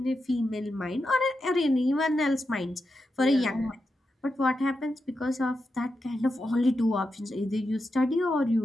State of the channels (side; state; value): both; normal; correlation 0.88